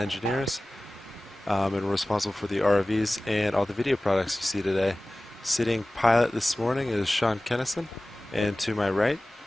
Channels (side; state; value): both; normal; correlation 0.97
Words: And we're responsible for the ROVs and all the video products you see today. Sitting pilot this morning is Sean Kennison, and to my right,